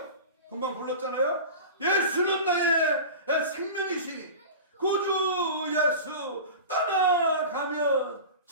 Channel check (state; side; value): inverted; both; correlation -0.32